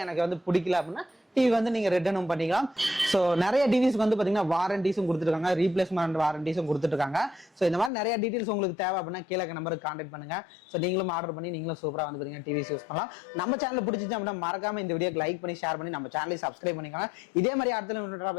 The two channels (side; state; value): right; drops out; at 7.9 s